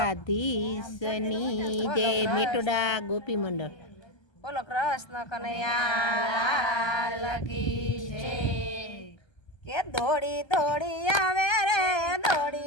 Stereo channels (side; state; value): right; late; 1.3 ms